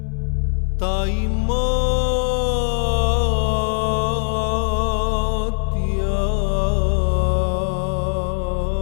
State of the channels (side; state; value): right; silent; digital silence